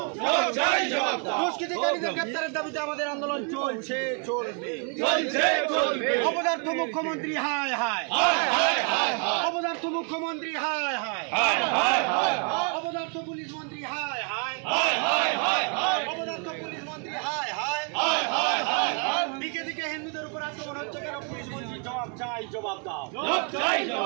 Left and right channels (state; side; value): quieter; left; 38.5 dB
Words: জবাব চাই জবাব দাও। দুষ্কৃতিকারীদের গ্রেপ্তারের দাবিতে আমাদের আন্দোলন চলছে চলবে, চলছে চলবে। অপদার্থ মুখ্যমন্ত্রী হায় হায় হায় হায়, অপদার্থ মুখ্যমন্ত্রী হায় হায় হায় হায়, অপদার্থ পুলিশ মন্ত্রী হায় হায় হায় হায় হায়, অপদার্থ পুলিশ মন্ত্রী হায় হায় হায় হায় হায়। দিকে দিকে হিন্দুদের উপর আক্রমণ হচ্ছে কেন? পুলিশ মন্ত্রী জবাব চাই জবাব দাও, জবাব চাই